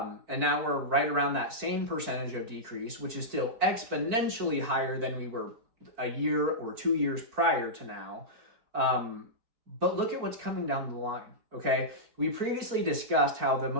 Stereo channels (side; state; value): left; late; 4.5 ms